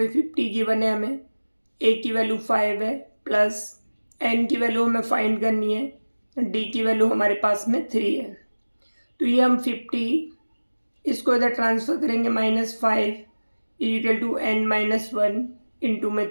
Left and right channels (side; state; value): both; inverted; correlation -1.00